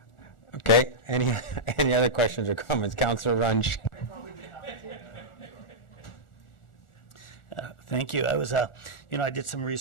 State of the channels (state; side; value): late; right; 1.4 ms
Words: Okay, any other questions or comments? Councillor Runge. Thank you. I was, I did some